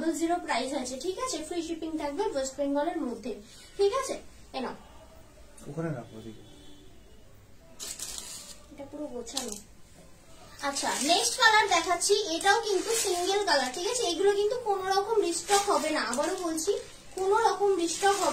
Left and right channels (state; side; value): identical; both; correlation 1.00